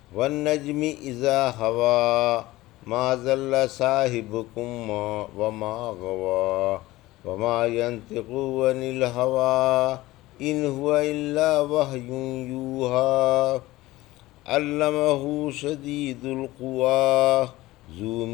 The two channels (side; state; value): right; quieter; 18.1 dB